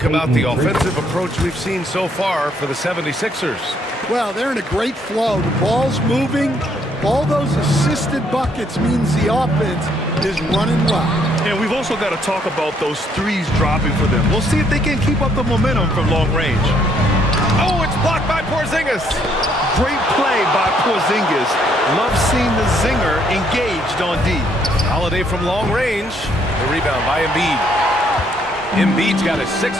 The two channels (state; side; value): normal; both; correlation 0.69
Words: about the offensive approach we've seen so far for the 76ers? Well, they're in a great flow. The ball's moving. All those assisted buckets means the offense is running well. And we've also got to talk about those 3s dropping for them. We'll see if they can keep up the momentum from long range. Oh, it's blocked by Porzingis. Great play by Porzingis. Love seeing the zinger engaged on D. Holiday from long range. The rebound by Embiid. Embiid's got his